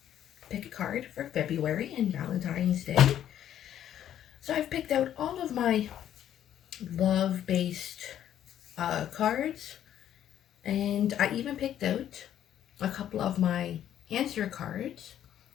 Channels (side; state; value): right; quieter; 10.8 dB